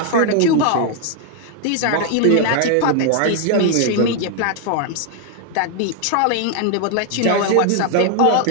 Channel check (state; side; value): different; both; correlation 0.00